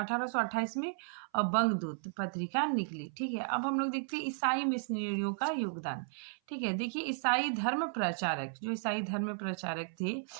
में बंगदूत पत्रिका निकली। ठीक है, अब हम लोग देखते हैं ईसाई मिशनरियों का योगदान। ठीक है, देखिए ईसाई धर्म प्रचारक, जो ईसाई धर्म प्रचारक थे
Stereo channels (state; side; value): silent; left; 55 dB below the other